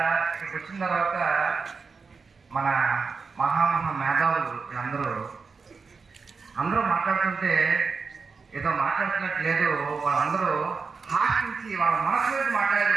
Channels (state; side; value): quieter; left; 4.9 dB